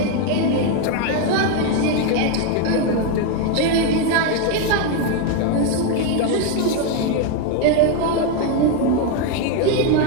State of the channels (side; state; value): both; different; correlation 0.01